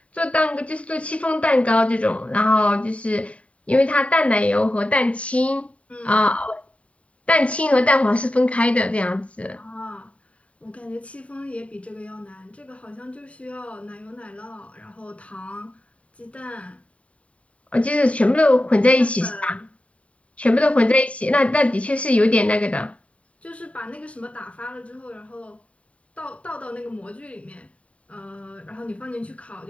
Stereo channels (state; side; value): late; right; 0.065 ms